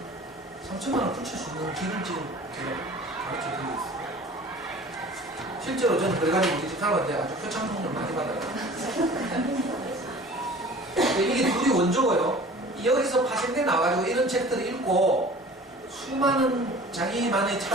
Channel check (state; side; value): normal; both; correlation 0.44